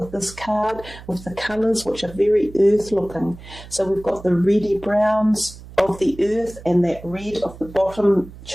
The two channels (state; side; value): noise; right; hum, 17 dB below the sound